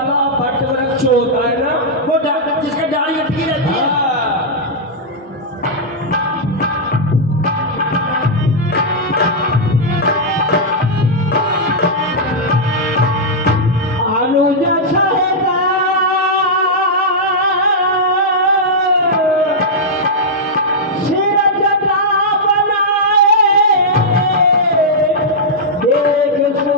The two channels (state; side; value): normal; both; correlation -0.07